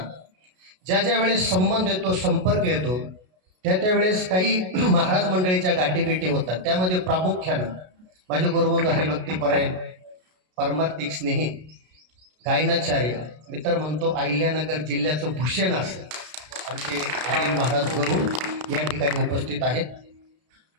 ज्या ज्या वेळेस संबंध येतो, संपर्क येतो, त्या त्यावेळेस काही महाराज मंडळीच्या गाठीभेटी होतात. त्यामध्ये प्रामुख्यानं माझे गुरुबंधू हरिभक्तीपरायण, परमार्थिक स्नेही, गायनाचार्य, मी तर म्हणतो अहिल्यानगर जिल्ह्याचं भूषण असं आमचे अनिल महाराज गुरु या ठिकाणी उपस्थित आहेत.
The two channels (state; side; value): late; left; 33 ms